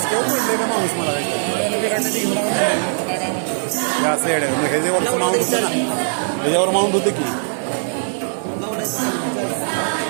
म्हणले का माणूस मला काढण्याची घेऊन हे असं येडे मग ह्याच्यावरचं माउंट होतं ना, ह्याच्यावर माउंट होतं की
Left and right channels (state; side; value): silent; left; 66 dB below the other